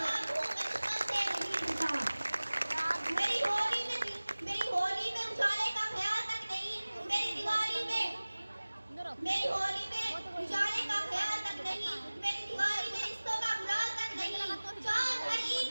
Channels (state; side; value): inverted; both; correlation -1.00